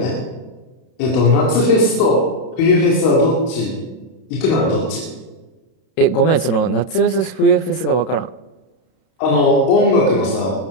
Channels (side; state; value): right; late; 32 ms